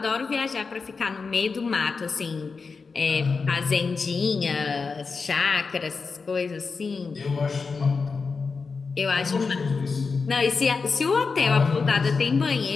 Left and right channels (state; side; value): quieter; right; 4.7 dB